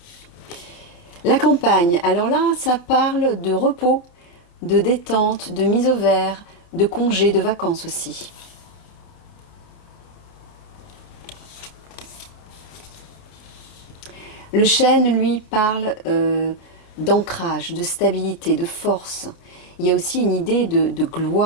La campagne, alors là, ça parle de repos, de détente, de mise au vert, de congés, de vacances aussi. Le chêne, lui, parle d'ancrage, de stabilité, de force. Il y a aussi une idée de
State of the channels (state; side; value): late; right; 29 ms